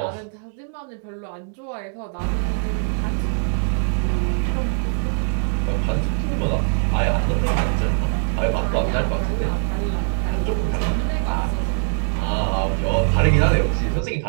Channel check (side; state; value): left; silent; 57 dB below the other